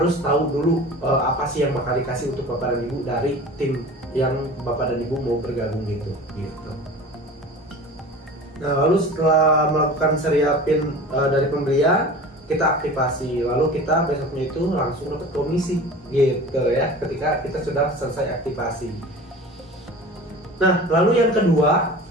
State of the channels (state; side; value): normal; both; correlation 0.38